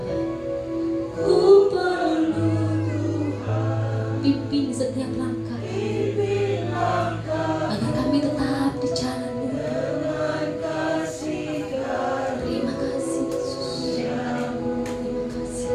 ku perlu Tuhan. Pimpin setiap langkah, agar kami tetap di jalan. Terima kasih Yesus. Terima kasih.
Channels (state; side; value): identical; both; correlation 1.00